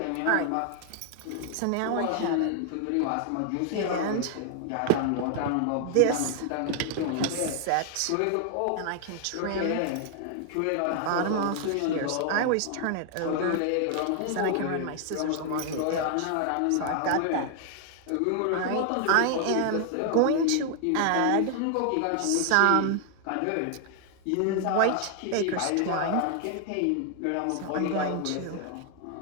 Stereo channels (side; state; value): both; different; correlation 0.00